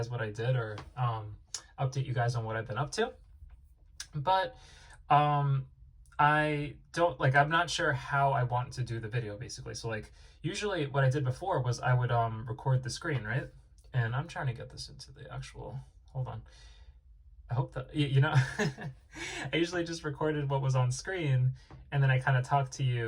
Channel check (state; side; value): identical; both; correlation 1.00